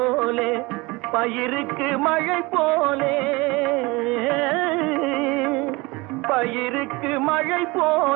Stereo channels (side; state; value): left; quieter; 23.9 dB